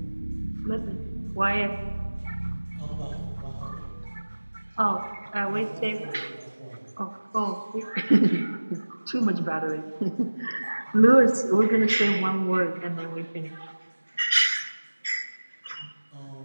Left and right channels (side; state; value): both; inverted; correlation -1.00